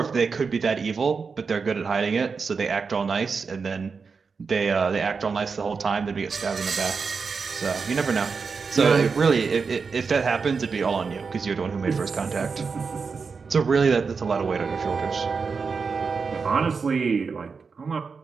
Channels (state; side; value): quieter; left; 5.1 dB